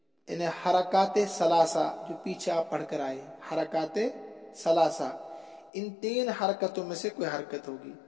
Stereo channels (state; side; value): drops out; right; at 5.7 s